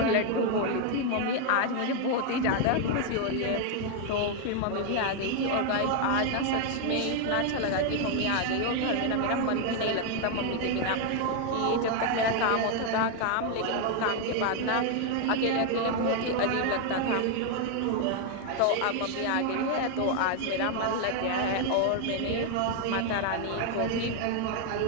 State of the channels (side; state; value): both; different; correlation 0.01